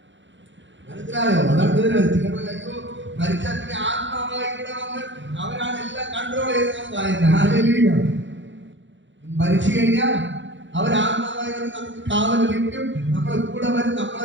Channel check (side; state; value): left; late; 0.54 ms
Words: മനസ്സിലായോ? അതാണ് അയ്യോ മരിച്ചാൽ പിന്നെ ആത്മാവായി ഇവിടെ വന്ന് അവരാണ് എല്ലാം കൺട്രോൾ ചെയ്തെന്നാണ് പറയുന്നത്. ഹല്ലേലൂയ. മരിച്ചു കഴിഞ്ഞാൽ അവരാത്മാവായി വന്ന് നമുക്ക് കാവൽ നിൽക്കും, നമ്മളെ കൂടെ വരും,